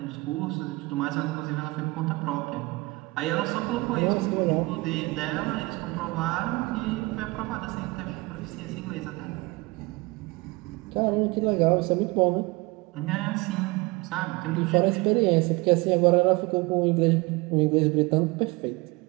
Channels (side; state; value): left; quieter; 23.7 dB